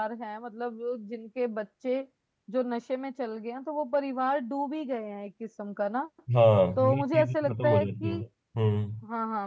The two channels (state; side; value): identical; both; correlation 1.00